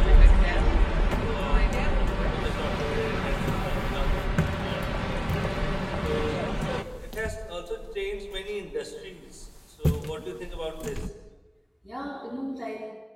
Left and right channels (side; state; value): both; identical; correlation 1.00